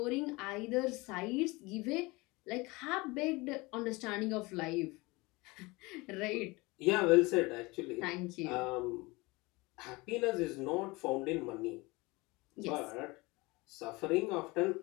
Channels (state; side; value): quieter; right; 23.7 dB